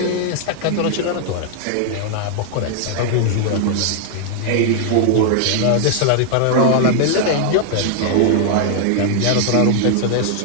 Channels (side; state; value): both; different; correlation 0.00